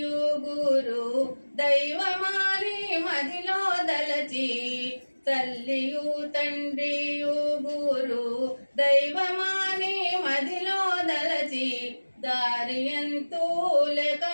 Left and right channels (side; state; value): both; inverted; correlation -1.00